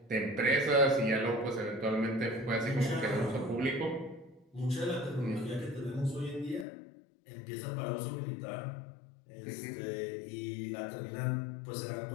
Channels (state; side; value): drops out; right; at 6.7 s